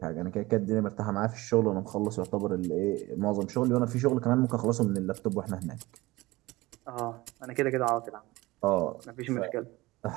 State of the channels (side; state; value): left; quieter; 20.1 dB